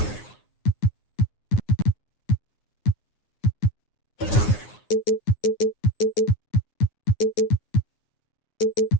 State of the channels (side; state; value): right; late; 9.6 ms